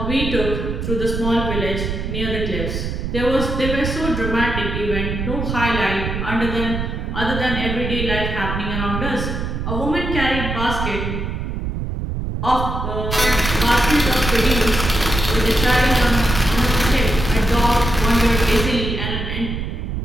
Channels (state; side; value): noise; right; rumble, 3 dB below the sound